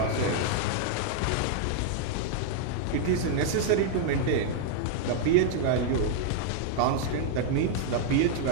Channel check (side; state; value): both; different; correlation 0.00